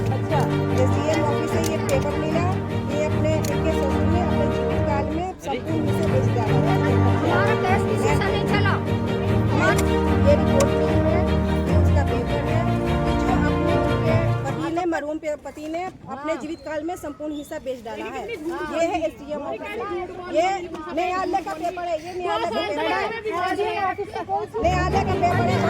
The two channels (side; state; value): both; identical; correlation 1.00